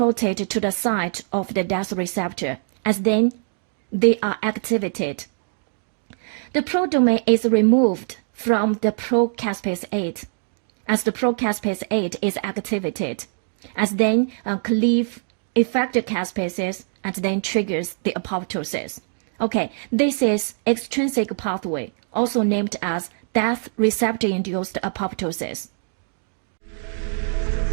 to the site of the death receptor, as then they are activated. The prodomain is removed from the procaspase 8 as the procaspase 8 is activated, as then cleave effector caspases and then triggers the apoptosis. Okay, this is extrinsic pathway, also named as death receptor-induced apoptosis.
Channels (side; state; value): left; silent; digital silence